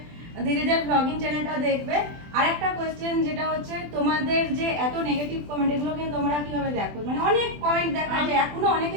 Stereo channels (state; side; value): late; left; 24 ms